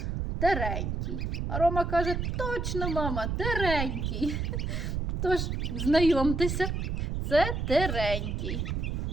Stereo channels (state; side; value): noise; right; rumble, 2 dB below the sound